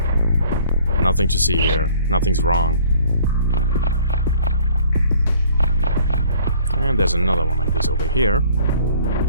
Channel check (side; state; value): both; inverted; correlation -0.55